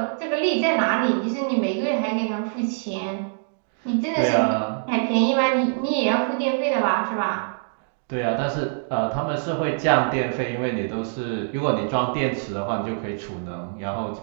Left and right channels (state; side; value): silent; left; digital silence